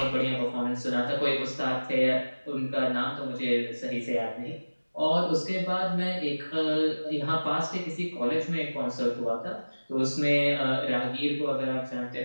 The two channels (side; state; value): both; inverted; correlation -1.00